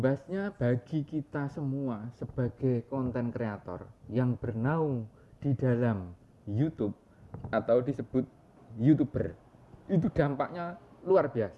bagi kita semua sebagai konten kreator yang bernaung di dalam YouTube atau disebut YouTuber, itu dampaknya luar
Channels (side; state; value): both; identical; correlation 1.00